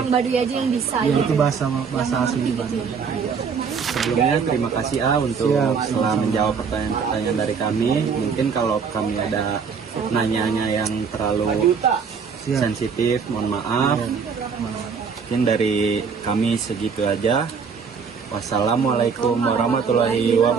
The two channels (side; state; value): left; quieter; 5.9 dB